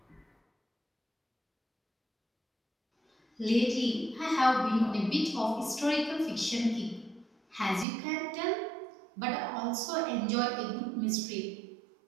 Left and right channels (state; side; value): drops out; left; at 7.9 s